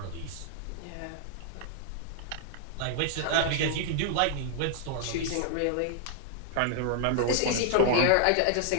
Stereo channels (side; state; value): both; different; correlation -0.01